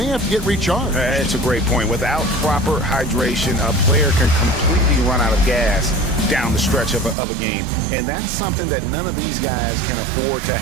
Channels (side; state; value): left; drops out; at 7.2 s